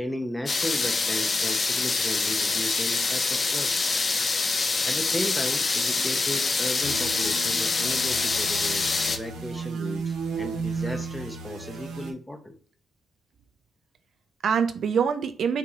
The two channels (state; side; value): normal; both; correlation 0.86